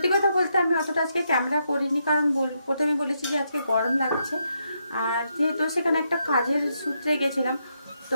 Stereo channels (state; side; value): inverted; both; correlation -0.80